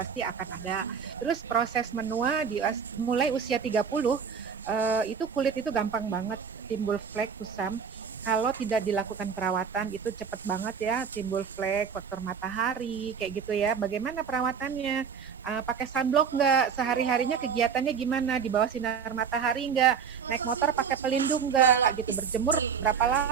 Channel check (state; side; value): quieter; left; 6.7 dB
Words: akan ada. Terus proses menua mulai usia 30, itu kulit itu gampang banget timbul flek, kusam. Kalau tidak dilakukan perawatan itu cepat banget ya timbul flek, faktor matahari, kayak gitu ya. Bagaimana perawatannya? Pakai sunblock nggak? Sehari-harinya kegiatannya gimana? Di bawah sinar matahari nggak? Naik motor pakai pelindung nggak? Gitu. Berjemur berapa